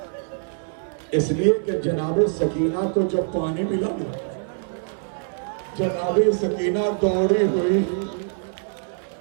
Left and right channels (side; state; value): left; silent; digital silence